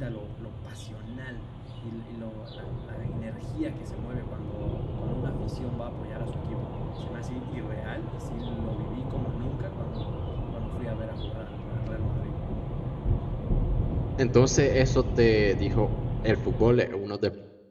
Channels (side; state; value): both; identical; correlation 1.00